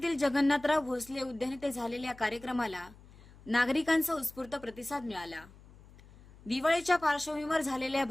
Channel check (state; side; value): noise; left; hum, 22 dB below the sound